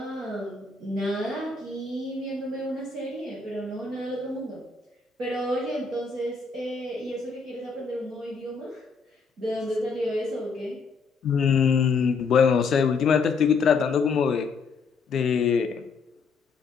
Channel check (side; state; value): right; quieter; 4.8 dB